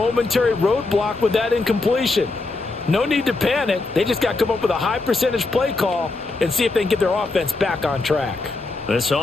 roadblock with that incompletion. No need to panic. They just got to come up with a high percentage play call and see if they can get their offense back on track. This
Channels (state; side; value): quieter; right; 3.4 dB